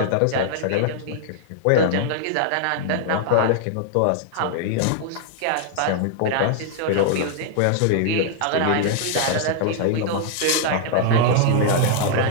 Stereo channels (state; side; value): different; both; correlation -0.01